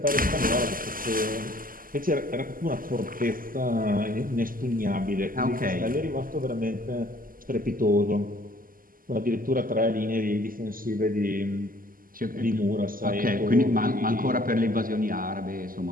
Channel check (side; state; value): left; late; 0.41 ms